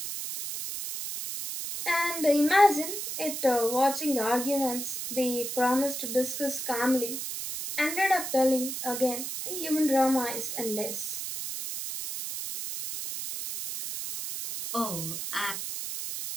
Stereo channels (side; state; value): right; noise; hiss, 5 dB below the sound